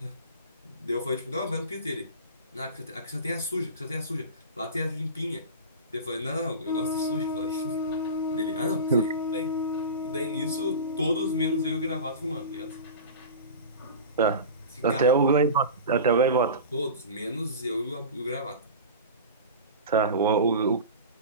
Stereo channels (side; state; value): both; inverted; correlation -0.31